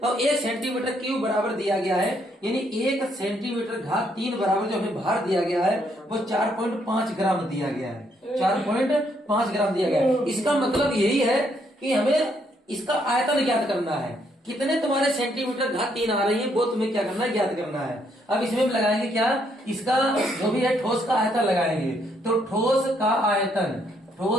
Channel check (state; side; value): normal; both; correlation 0.72